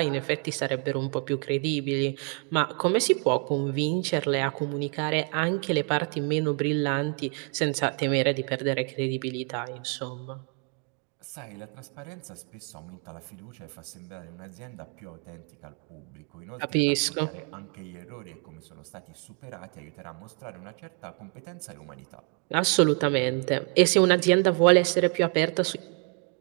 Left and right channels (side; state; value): left; quieter; 37.6 dB